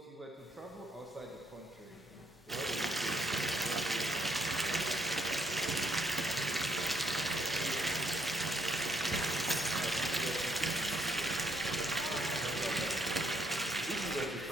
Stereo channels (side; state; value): both; normal; correlation 0.71